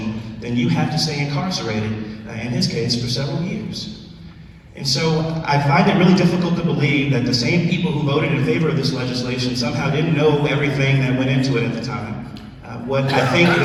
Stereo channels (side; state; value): both; identical; correlation 1.00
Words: then you have to stay incarcerated, in his case, for several years. And so I find it really difficult to believe that the same people who voted in favor of this legislation somehow didn't know everything that went into it at the time. What I think